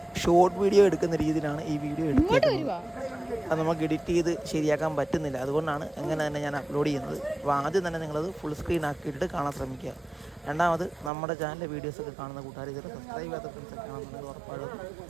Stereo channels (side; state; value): left; drops out; at 11.1 s